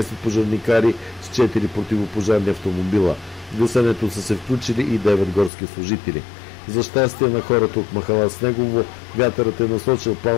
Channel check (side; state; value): right; drops out; at 5.5 s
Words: пожарникари с 4 противопожарни автомобила. В гасенето са се включили и 9 горски служители. За щастие на хората от махала Снегово, вятърът е насочил